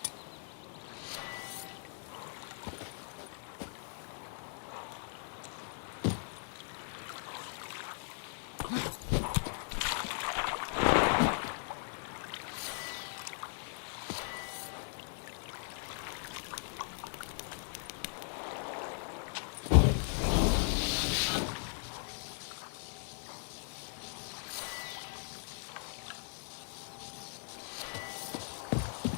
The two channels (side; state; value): right; silent; digital silence